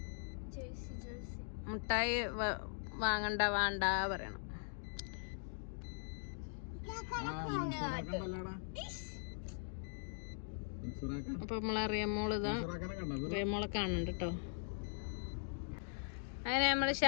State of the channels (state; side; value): silent; right; digital silence